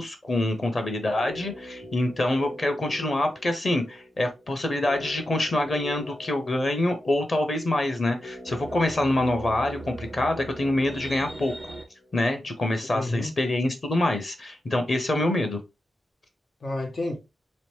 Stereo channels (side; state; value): both; normal; correlation 0.89